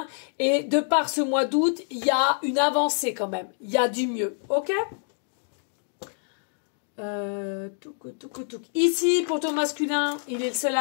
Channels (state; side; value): silent; right; 61 dB below the other